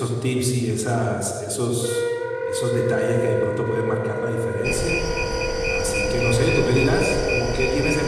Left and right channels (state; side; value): identical; both; correlation 1.00